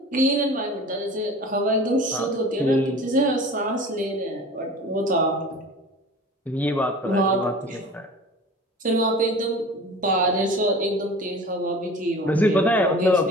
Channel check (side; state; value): both; normal; correlation 0.40